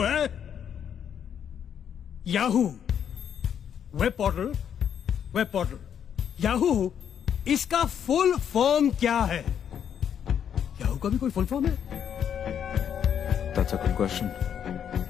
है याहू वेब पोर्टल। याहू, इसका फुल फॉर्म क्या है? याहू का भी कोई फुल फॉर्म है? That's a good question.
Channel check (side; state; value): right; quieter; 8.6 dB